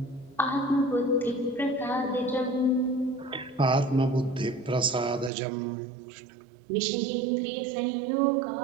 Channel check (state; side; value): drops out; left; at 5.3 s